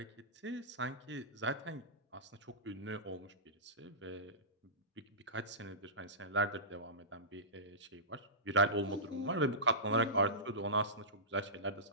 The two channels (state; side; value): normal; both; correlation -0.19